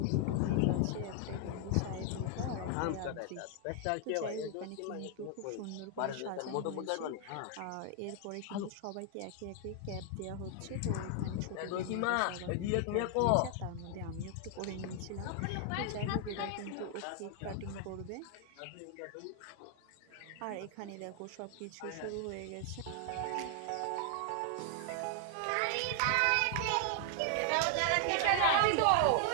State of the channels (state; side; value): different; both; correlation 0.00